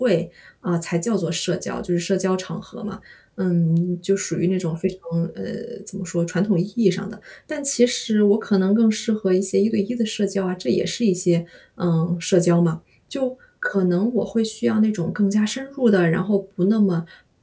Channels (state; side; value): identical; both; correlation 1.00